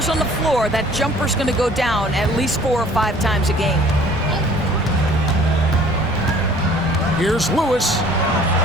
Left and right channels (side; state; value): both; normal; correlation 0.53